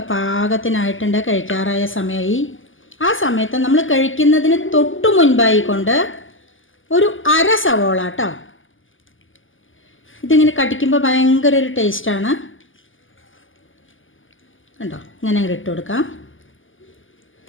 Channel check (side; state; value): right; late; 0.58 ms